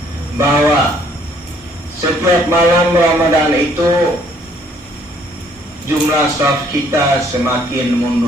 bahwa setiap malam Ramadan itu jumlah shaf kita semakin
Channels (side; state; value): both; normal; correlation 0.63